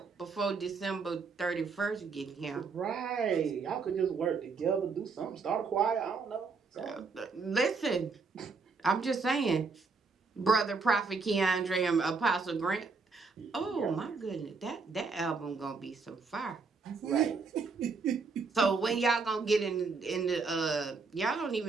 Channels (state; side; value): quieter; left; 4.6 dB